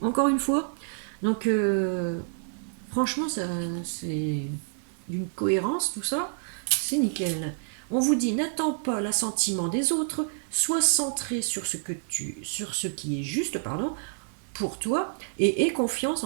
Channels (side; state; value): left; silent; 58 dB below the other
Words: une fois. Donc, franchement, c'est d'une cohérence, tout ça. C'est nickel. On vous dit « N'attends pas l'assentiment des autres, sois centré sur ce qui est juste, pour toi, et aie confiance